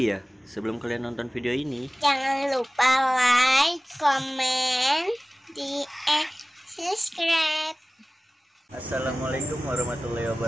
sebelum kalian nonton video ini, jangan lupa like, komen, subscribe. Assalamualaikum warahmatullahi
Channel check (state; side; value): normal; both; correlation 0.97